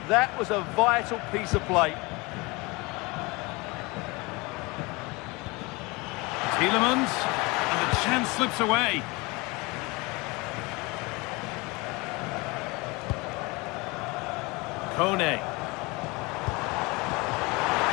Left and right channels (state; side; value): quieter; right; 25.3 dB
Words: That was a vital piece of play. Tielemans, and the chance slips away. Kone.